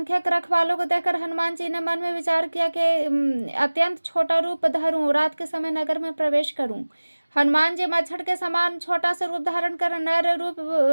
रखवालों को देखकर हनुमान जी ने मन में विचार किया कि अत्यंत छोटा रूप धरूं, रात के समय नगर में प्रवेश करूं। हनुमान जी मच्छर के समान छोटा सा रूप धारण कर नर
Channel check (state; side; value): inverted; both; correlation -1.00